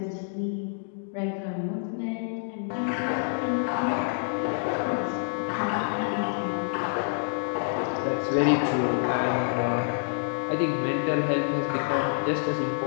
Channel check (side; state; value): right; silent; digital silence